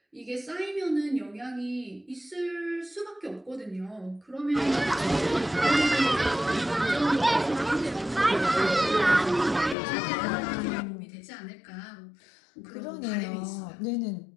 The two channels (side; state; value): right; drops out; at 9.8 s